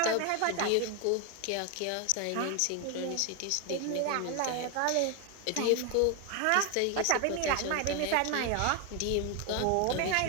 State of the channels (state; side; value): different; both; correlation 0.01